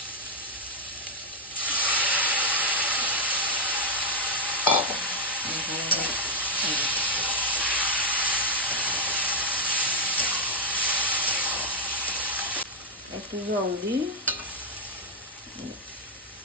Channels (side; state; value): both; normal; correlation 0.01